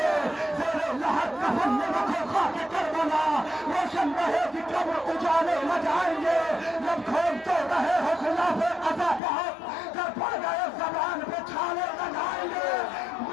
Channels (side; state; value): right; drops out; at 9.2 s